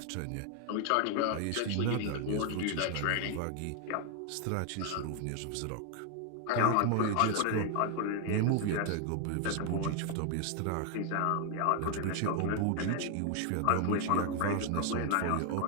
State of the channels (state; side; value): different; both; correlation 0.00